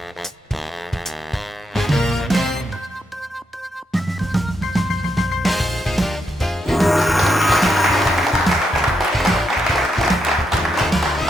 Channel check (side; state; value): both; normal; correlation 0.81